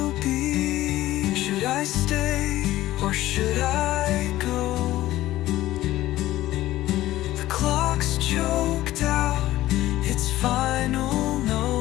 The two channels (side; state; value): right; quieter; 15.5 dB